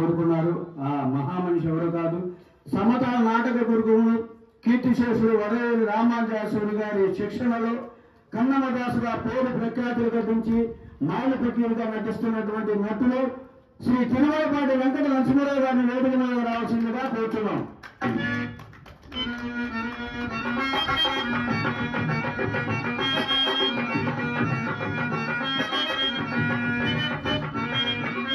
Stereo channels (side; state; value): both; identical; correlation 1.00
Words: ఆ మహామనిషి ఎవరో కాదు, సమతా నాటక గురువులు కీర్తిశేషుడు వరవేలి రామానుజాచార్యులు గారి శిక్షణలో కన్నమదాసుగా పేరు ప్రఖ్యాతులు గడించి మాయల ప్రక్రియగా నటిస్తున్నటువంటి నటులు శ్రీ తిరుమలపాటి వెంకట నరసింహారావు గారిని వేదిక మీద రావాల్సిందిగా కోరుతున్నాం.